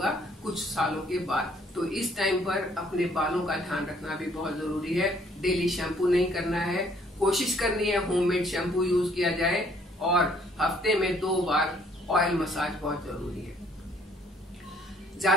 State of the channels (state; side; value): normal; both; correlation 0.63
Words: कुछ सालों के बाद। तो इस टाइम पर अपने बालों का ध्यान रखना भी बहुत जरूरी है। डेली शैम्पू नहीं करना है, कोशिश करनी है होममेड शैम्पू यूज किया जाए और हफ्ते में 2 बार ऑयल मसाज बहुत जरूरी है।